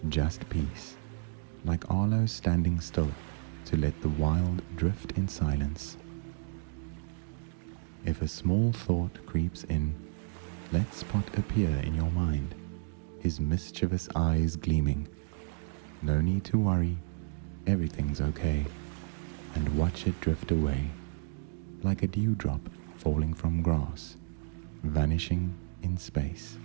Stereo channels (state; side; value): silent; left; digital silence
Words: just peace, like Arlo standing still to let the wild drift in silence. If a small thought creeps in, let Spot appear in your mind, his mischievous eyes gleaming. No need to worry, everything's okay, and watch it drift away, like a dewdrop falling from grass, vanishing in space.